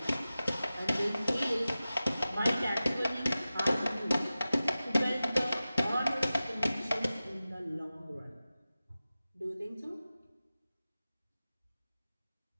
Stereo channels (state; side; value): inverted; both; correlation -0.95